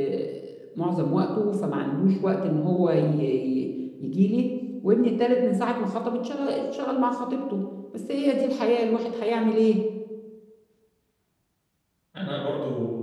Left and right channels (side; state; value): both; identical; correlation 1.00